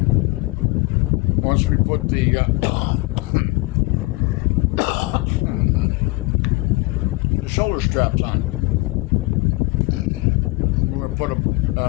we put the shoulder straps on. I'm going to put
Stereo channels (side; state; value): right; quieter; 23.3 dB